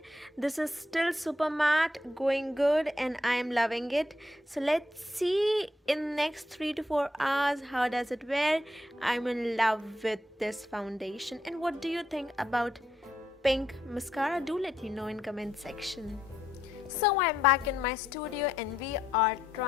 This is still super matte, going good, and I am loving it. So let's see in next 3 to 4 hours how does it wear. I'm in love with this foundation. And what do you think about pink mascara? Do let me know in comment section. So I'm back in my studio and we are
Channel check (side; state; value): both; normal; correlation 0.78